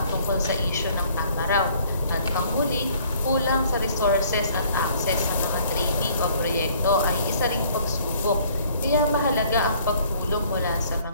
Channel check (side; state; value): both; inverted; correlation -0.59